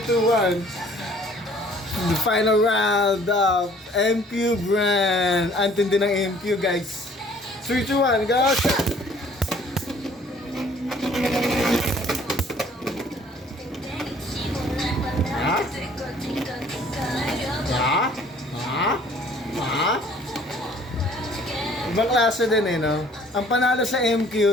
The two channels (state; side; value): normal; both; correlation 0.56